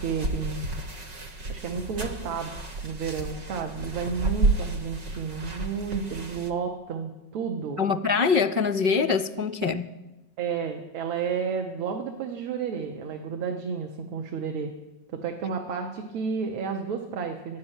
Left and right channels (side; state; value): left; late; 5.4 ms